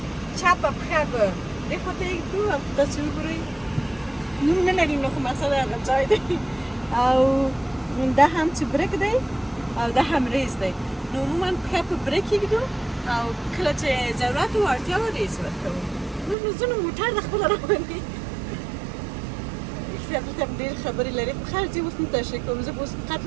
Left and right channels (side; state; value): left; drops out; at 16.4 s